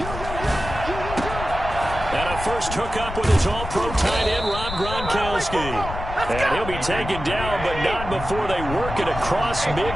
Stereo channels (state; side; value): noise; left; rumble, 8 dB below the sound